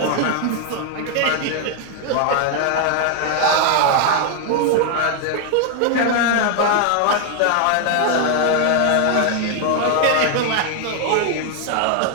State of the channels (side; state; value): both; different; correlation 0.00